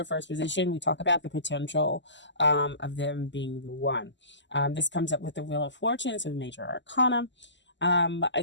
first position, we talk about the potential of them being the one. This comes up with the Wheel of Fortune, so major arcana. I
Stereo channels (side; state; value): right; late; 0.53 ms